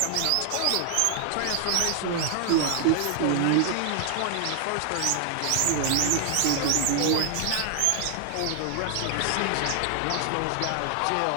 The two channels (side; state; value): both; different; correlation 0.00